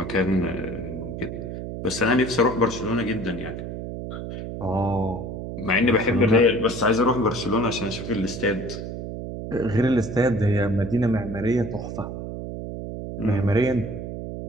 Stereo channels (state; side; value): noise; right; hum, 7 dB below the sound